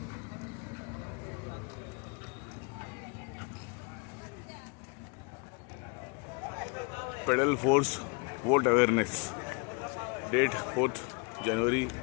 Pedal force vote awareness. Date 4 जानेवारी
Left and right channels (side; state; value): right; quieter; 33.9 dB